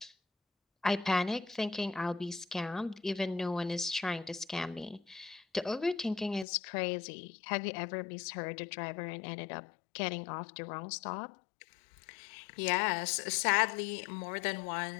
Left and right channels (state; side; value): drops out; right; at 6.5 s